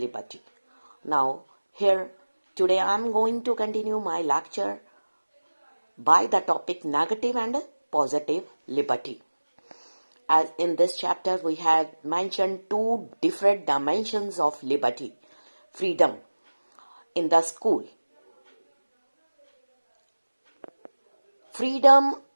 Now, here today I am going to continue my lecture by the topic Negative and Positive Liberty. As in this chapter, we have mentioned two different dimensions of liberty, freedom in the school. Freedom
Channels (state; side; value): inverted; both; correlation -1.00